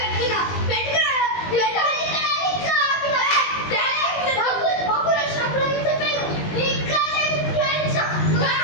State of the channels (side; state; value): right; late; 19 ms